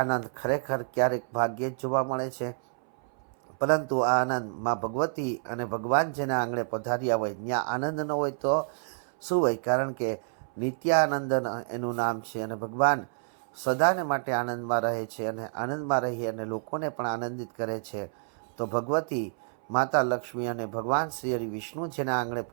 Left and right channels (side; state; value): left; silent; 59 dB below the other